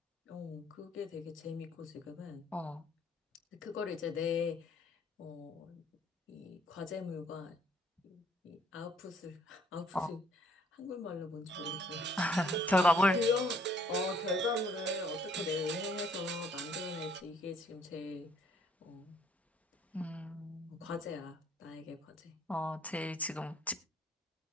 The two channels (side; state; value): both; normal; correlation 0.63